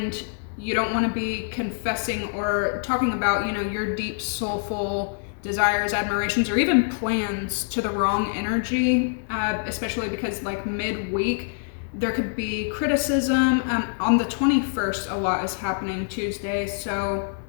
you don't want to be confessing or talking about your deep soulful desires, admirations, or even plans to the wrong energy, especially because like midweek there could be criticism. On the 21st a lot is happening, Tuesday, so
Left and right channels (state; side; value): silent; right; digital silence